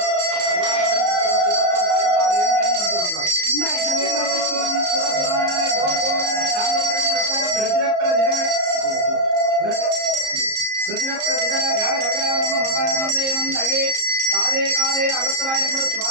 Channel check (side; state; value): left; late; 34 ms